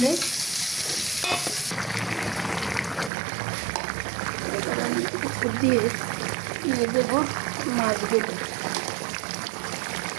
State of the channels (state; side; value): drops out; left; at 3.1 s